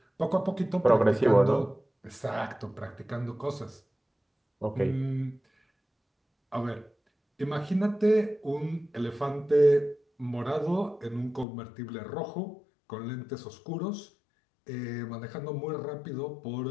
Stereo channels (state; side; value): drops out; right; at 11.5 s